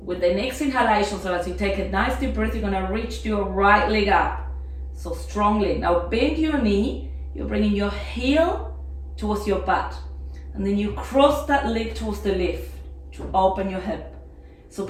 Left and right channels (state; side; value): identical; both; correlation 1.00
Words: With the next inhalation, so as you take a nice deep breath, you're going to reach your right leg up. So strongly. Now bend your knee. You're bringing your heel towards your butt. And then you cross that leg towards the left to open your hip. So